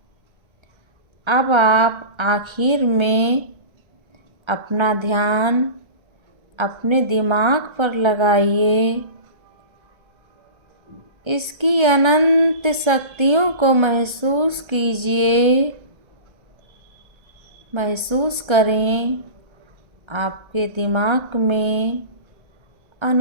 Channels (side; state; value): left; late; 1.4 ms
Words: अब आप आखिर में अपना ध्यान अपने दिमाग पर लगाइए। इसकी अनंत शक्तियों को महसूस कीजिए। महसूस करें आपके दिमाग में